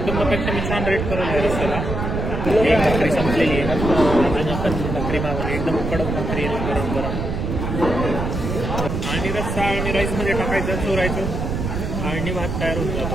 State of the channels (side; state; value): right; noise; rumble, 3 dB below the sound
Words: मी छान रेट करून आहे रस्त्याला. एक भाकरी संपलेली आहे आणि भाकरी मागवली, एकदम कडक भाकरी आहे गरम गरम. आणि रस्सा आणि राईसमध्ये टाकायचं, चोरायचं आणि भात तयार होऊन जातो.